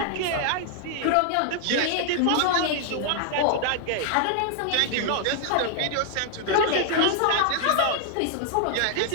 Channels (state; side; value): different; both; correlation 0.00